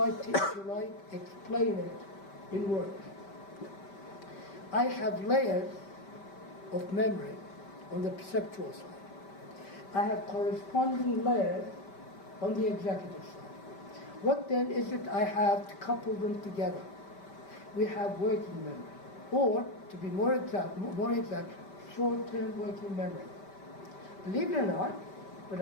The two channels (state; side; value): late; right; 5.1 ms